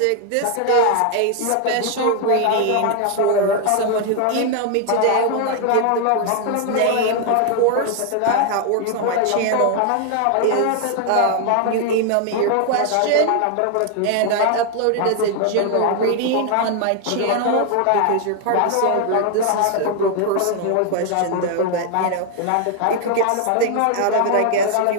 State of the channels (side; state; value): both; different; correlation 0.00